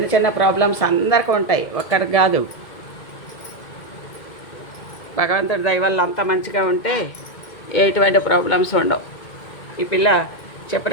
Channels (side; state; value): right; late; 2.1 ms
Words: చిన్న ప్రాబ్లమ్స్ అందరికీ ఉంటాయి, ఒక్కరికి కాదు. భగవంతుడి దయ వల్ల అంత మంచిగా ఉంటే ఎటువంటి ప్రాబ్లమ్స్ ఉండవు. ఈ పిల్ల